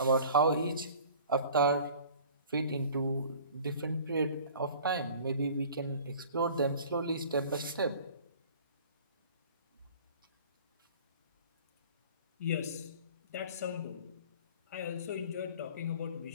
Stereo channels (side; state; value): both; inverted; correlation -0.47